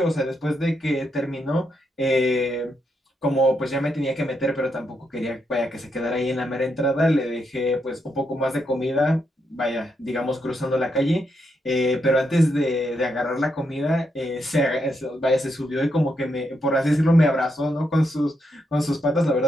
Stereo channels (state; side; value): normal; both; correlation 0.81